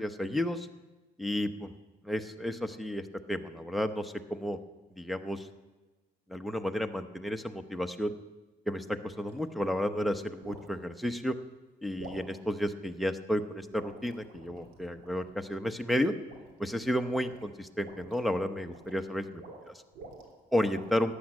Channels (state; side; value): normal; both; correlation 0.87